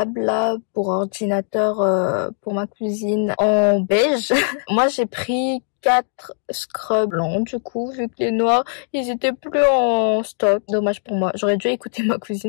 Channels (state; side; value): silent; right; digital silence